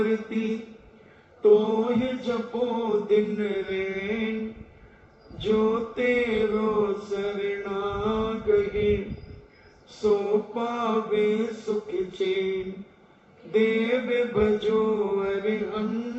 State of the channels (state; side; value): identical; both; correlation 1.00